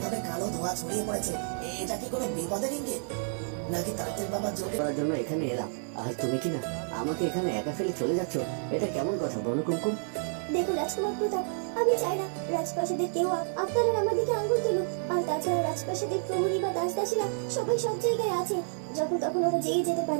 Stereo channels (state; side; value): silent; left; digital silence